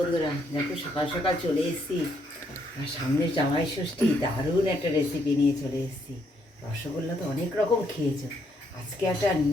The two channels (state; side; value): normal; both; correlation 0.73